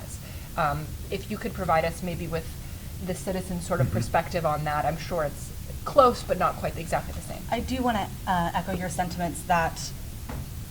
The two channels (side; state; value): both; identical; correlation 1.00